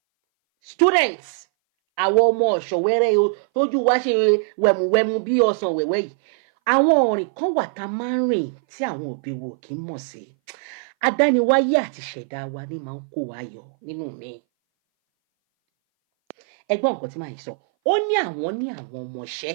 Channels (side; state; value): left; silent; 60 dB below the other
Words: students àwọn ọmọ ọ̀ṣọ̀wẹ́rẹ́ tójú wa ṣe wẹ̀mùwẹ̀mù bí ọsàn wẹ̀wẹ́ yìí àwọn ọ̀rìn kan wà tá máa ń rìn tí àwọn òbí wo kì í mọ̀ sí. Adániwáyé àti ṣẹ̀dá wa ní máa ń kó wa yọ nínú mi. Ẹgbọ́n nǹkan tí màá sọ, ó ní àwọn ọmọọṣẹ́